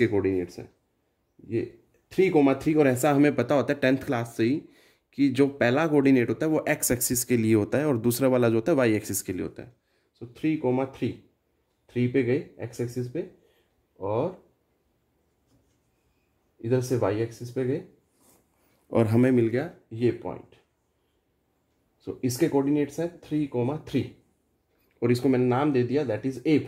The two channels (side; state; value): both; identical; correlation 1.00